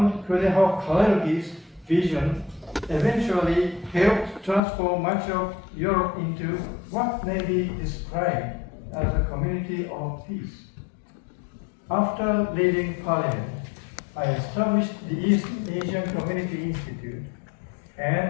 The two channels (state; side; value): drops out; right; at 4.6 s